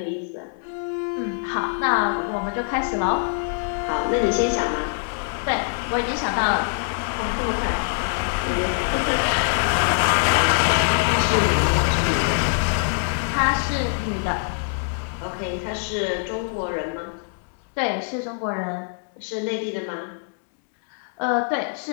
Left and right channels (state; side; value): silent; right; digital silence